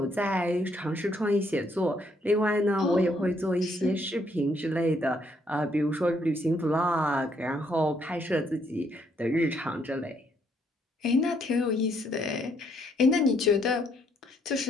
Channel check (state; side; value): normal; both; correlation 0.70